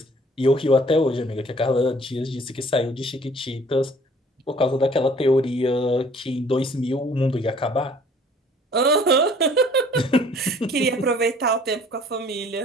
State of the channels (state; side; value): normal; both; correlation 0.55